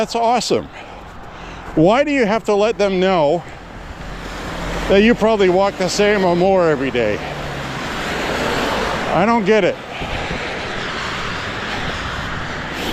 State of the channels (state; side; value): identical; both; correlation 1.00